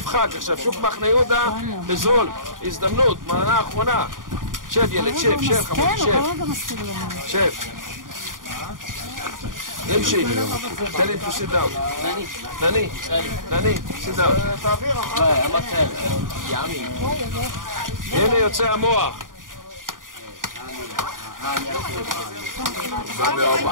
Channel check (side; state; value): left; late; 0.89 ms